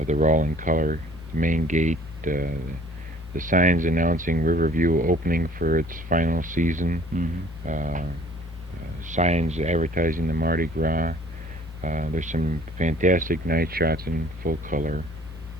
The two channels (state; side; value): normal; both; correlation 0.54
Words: They're all in color. The main gate, the signs announcing Riverview opening for its final season. Signs advertising the Mardi Gras. There's some fantastic night shots in full color,